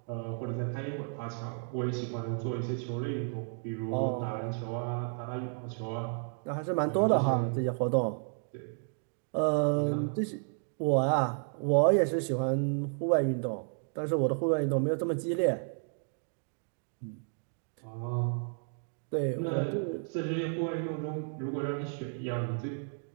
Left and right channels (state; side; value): silent; left; 56 dB below the other